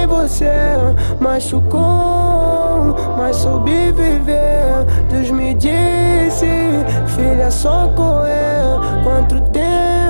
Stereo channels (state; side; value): inverted; both; correlation -1.00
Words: você, machucou, mas soube viver. Deus me disse, filha, só correr. Quanto